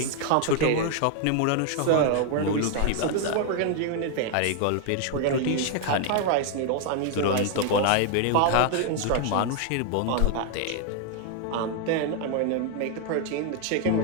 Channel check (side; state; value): both; different; correlation 0.00